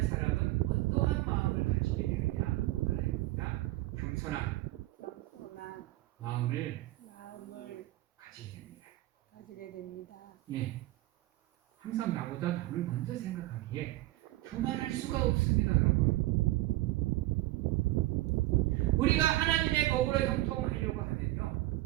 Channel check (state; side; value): quieter; left; 17.4 dB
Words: 사람은 어떠한 마음을 가지게 되느냐 하나입니다. 겸손한 마음을 가지게 됩니다. 예, 항상 나보다 남을 먼저 생각하기에 교만할 수가 없습니다, 여러분. 우리가 하나님의 법으로 형통하려고